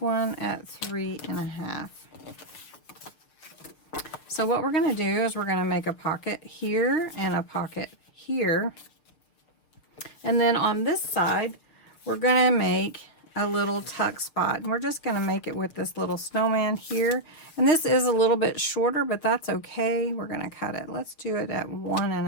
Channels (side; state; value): right; late; 6.6 ms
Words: one at 3.5. So what we're going to do is we're going to make a pocket here and a pocket here. And then on this side, we're going to make a little tuck spot. And we're just going to make it with this little snowman here. And this is a little bit shorter, but that's okay. We're going to cut it. Let's do it at